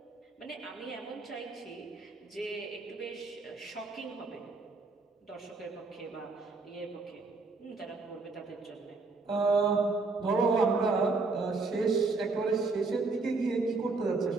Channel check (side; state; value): left; quieter; 3.9 dB